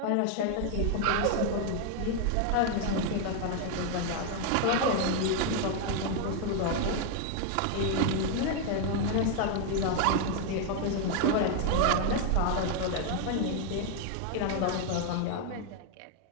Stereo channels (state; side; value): different; both; correlation 0.01